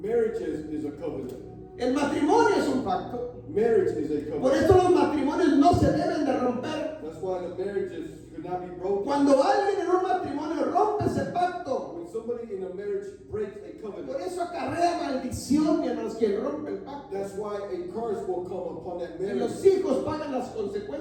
Marriage is a covenant. El matrimonio es un pacto. Marriage is a Por covenant. eso los matrimonios no se deben de romper. That's why the marriages should not be broken. Cuando alguien en un matrimonio rompe ese pacto, When somebody in a marriage breaks a por covenant, eso acarrea maldición, mi hermanos, quien rompe el pacto. that's why a curse will come upon that Y los marriage, hijos pagan las and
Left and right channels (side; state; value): both; identical; correlation 1.00